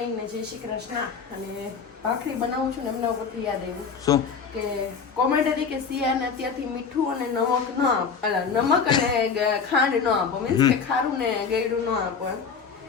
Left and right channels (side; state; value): right; quieter; 5.8 dB